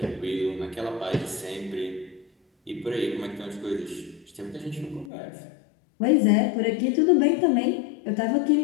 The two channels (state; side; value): drops out; right; at 5.1 s